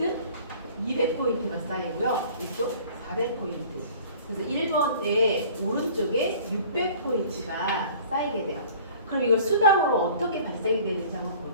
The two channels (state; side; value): inverted; both; correlation -0.48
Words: 200포인트가 쌓이고요. 이쪽 400포인트. 그래서 1번에 오른쪽에 600포인트가 쌓이게 돼요. 그럼 이걸 수당으로 어떻게 발생이 되는지 한번